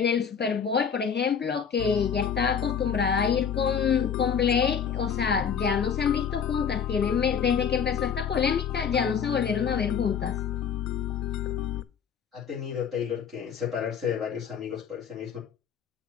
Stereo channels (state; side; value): quieter; right; 7.2 dB